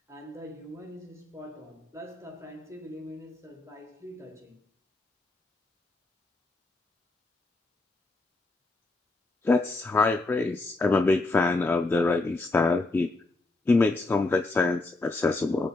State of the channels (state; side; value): quieter; right; 3.1 dB